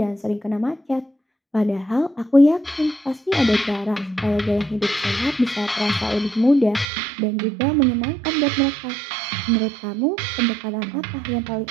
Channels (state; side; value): drops out; left; at 6.9 s